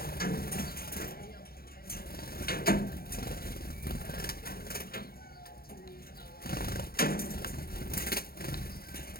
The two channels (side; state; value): right; late; 0.44 ms